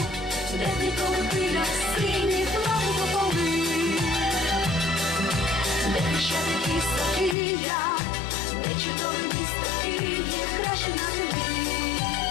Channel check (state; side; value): drops out; right; at 7.4 s